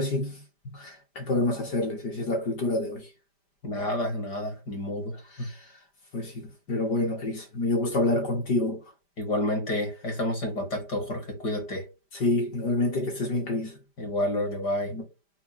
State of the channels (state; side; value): late; right; 5.1 ms